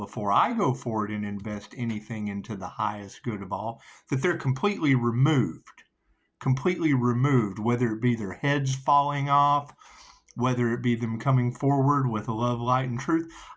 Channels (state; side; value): identical; both; correlation 1.00